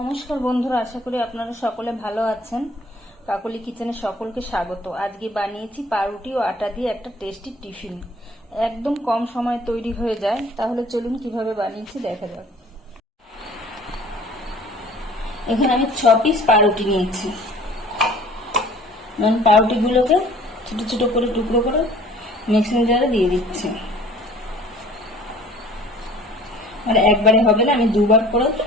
বন্ধুরা, আশা করি আপনারা সকলে ভালো আছেন। কাকলি কিচেনে সকলকে স্বাগত। আজকে বানিয়েছি পাউরুটি ও আটা দিয়ে একটা টেস্টি টিফিন। একদম কম সময়ে তৈরি হয়ে যায়। তাহলে চলুন কিভাবে বানিয়েছি দেখা যাক। এখানে আমি 6 পিস পাউরুটি নিয়েছি। পাউরুটিগুলোকে ছোট ছোট করে টুকরো করে মিক্সিং জারে দিয়ে দিচ্ছি। আর একবারে হবে না, আমি দুবার করে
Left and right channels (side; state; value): both; normal; correlation 0.50